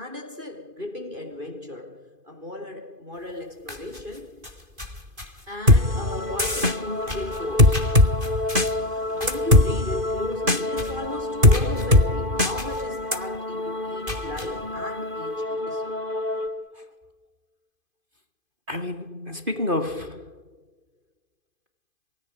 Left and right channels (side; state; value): left; late; 2.5 ms